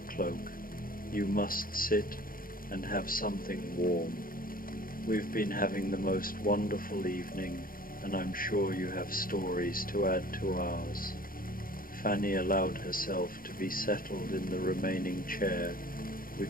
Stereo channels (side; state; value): right; late; 0.41 ms